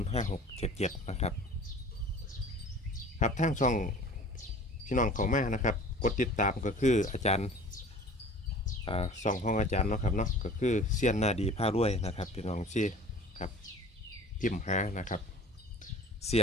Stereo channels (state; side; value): normal; both; correlation 0.44